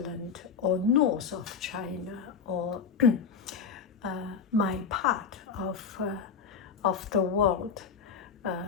or north of China or my part of the world,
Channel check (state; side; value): quieter; right; 6.1 dB